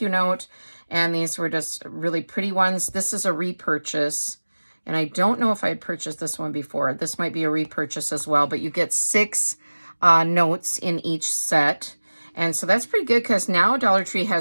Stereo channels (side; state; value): both; inverted; correlation -1.00